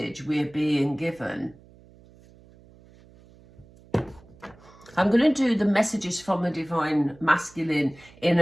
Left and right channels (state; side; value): noise; right; hum, 25 dB below the sound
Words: we're being given. I'm going to do the messages from the Divine Masculine in